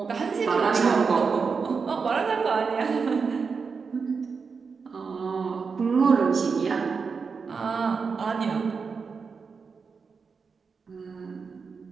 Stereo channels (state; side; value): quieter; left; 5.3 dB